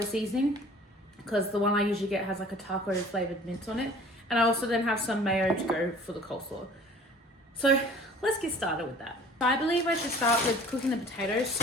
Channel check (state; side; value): normal; both; correlation 0.48